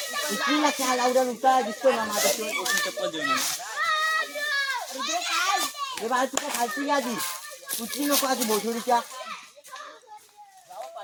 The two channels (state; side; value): identical; both; correlation 1.00